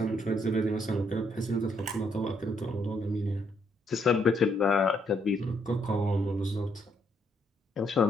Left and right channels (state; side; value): normal; both; correlation 0.73